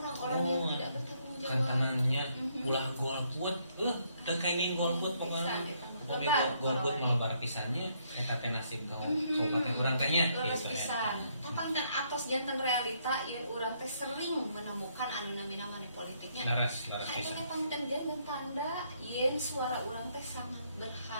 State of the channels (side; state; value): both; inverted; correlation -0.71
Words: yang tidak bertanggung jawab. Kantanannya ulah golput, teu kaini golput pokoknya. Pokoknya golput malebar pisannya eta teh nasib kabupaten urang teh nya gitu pisan. Tapangkan atos janten realita yen urang teh sering menemukan anu namina money politiknya. Laras pisan. Aya pangten janten tanda yen suara urang teh sangat